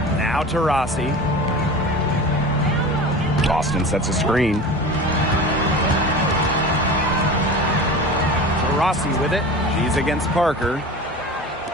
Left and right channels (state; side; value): normal; both; correlation 0.34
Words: Now Taurasi. Boston sets a screen. Taurasi with it. She's against Parker.